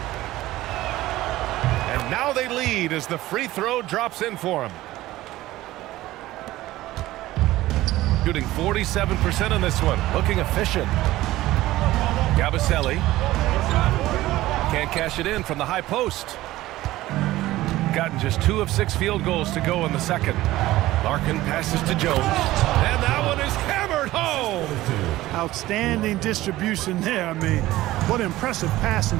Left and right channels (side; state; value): left; quieter; 16.5 dB